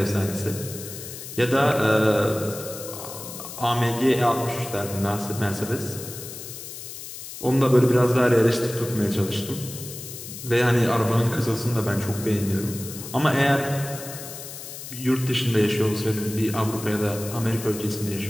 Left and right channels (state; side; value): noise; left; hiss, 11 dB below the sound